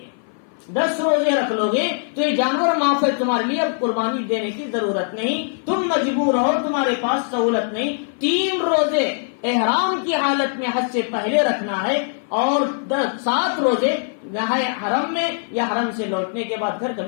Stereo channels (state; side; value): silent; right; 56 dB below the other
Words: 10 روزے رکھ لو گے تو یہ جانور معاف ہے تمہارے لیے، اب قربانی دینے کی ضرورت نہیں، تم مجبور ہو، تمہارے پاس سہولت نہیں۔ 3 روزے احرام کی حالت میں حج سے پہلے رکھنا ہے، اور 7 روزے حرم میں یا حرم سے لوٹنے کے بعد گھر